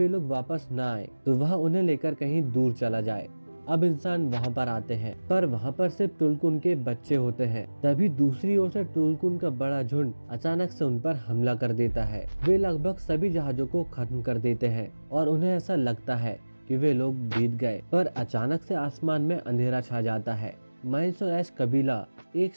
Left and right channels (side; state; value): both; inverted; correlation -1.00